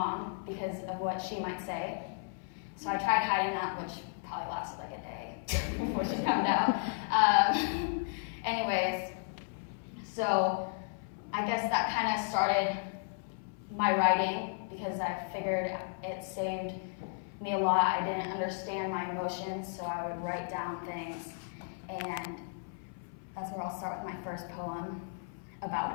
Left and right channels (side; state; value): right; silent; 55 dB below the other